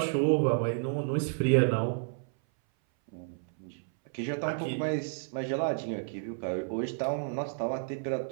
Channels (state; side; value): silent; left; 57 dB below the other